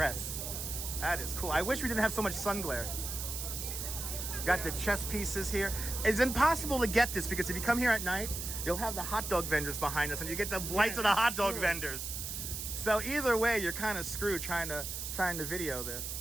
That is cool. I wish we didn't have so much sun glare. Got the chess pieces here. It's impossible to get this because if you come here at night, you'll have the hot dog vendors behind us, and you get the lights of the hot dog vendors. So either way, you're kind of screwed trying to video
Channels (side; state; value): right; noise; hiss, 5 dB below the sound